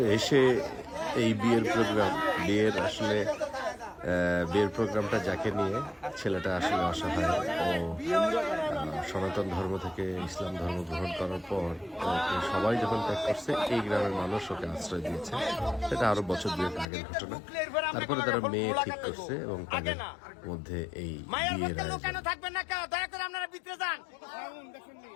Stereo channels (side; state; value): right; drops out; at 16.9 s